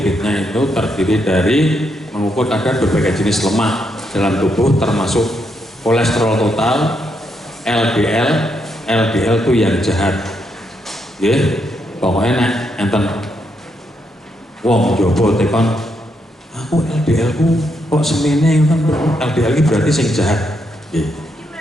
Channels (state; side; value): normal; both; correlation 0.79